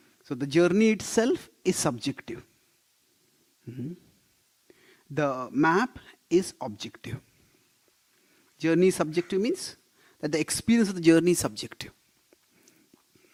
So the journey itself is subjective. The map is objective. Journey subjective means that the experience of the journey is subjective.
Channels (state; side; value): identical; both; correlation 1.00